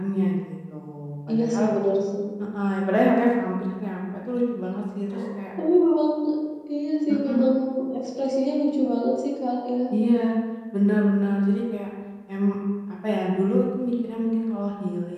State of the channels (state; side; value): identical; both; correlation 1.00